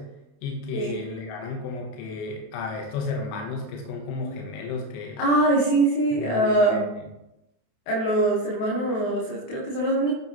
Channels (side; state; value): right; late; 28 ms